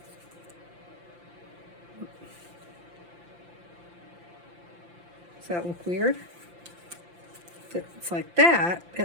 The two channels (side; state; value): left; late; 5.8 ms